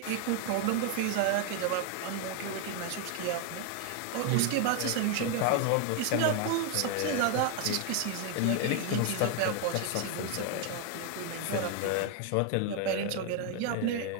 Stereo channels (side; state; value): both; different; correlation 0.01